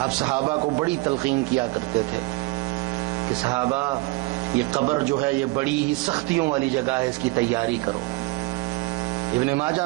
آپ صحابہ کو بڑی تلقین کیا کرتے تھے کہ صحابہ یہ قبر جو ہے یہ بڑی ہی سختیوں والی جگہ ہے, اس کی تیاری کرو. ابن ماجہ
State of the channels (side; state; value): left; quieter; 23.5 dB